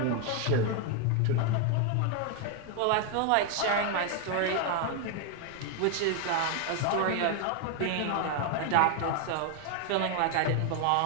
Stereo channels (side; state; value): both; different; correlation 0.01